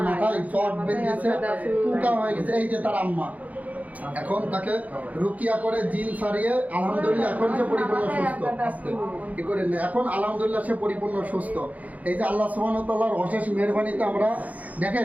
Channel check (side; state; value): left; late; 0.074 ms